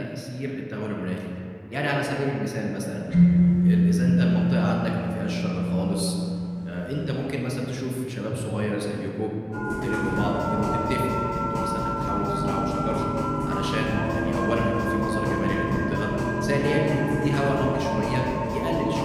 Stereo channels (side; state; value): both; identical; correlation 1.00